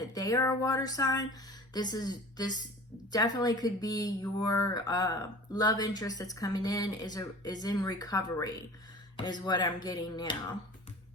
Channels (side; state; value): both; normal; correlation 0.40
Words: they are a water sign. This definitely could be your love interest that's coming in is in recovery, is what I'm getting now.